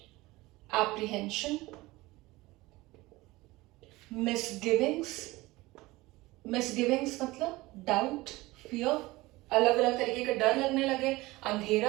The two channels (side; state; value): left; quieter; 20.1 dB